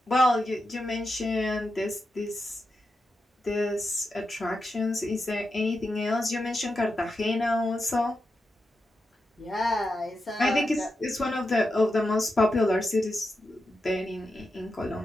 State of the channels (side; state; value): both; normal; correlation 0.88